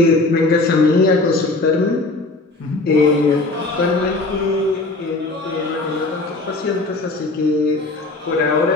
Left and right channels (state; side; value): quieter; right; 3.1 dB